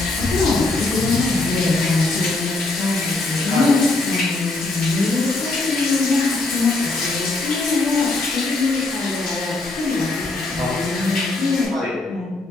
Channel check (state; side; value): quieter; right; 3.1 dB